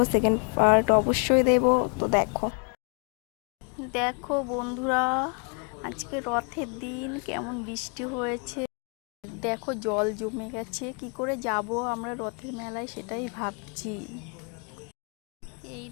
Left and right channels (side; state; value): right; quieter; 38.4 dB